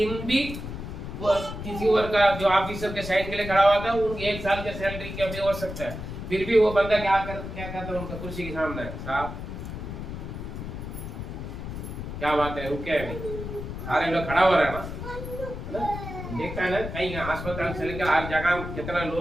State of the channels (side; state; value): left; noise; rumble, 8 dB below the sound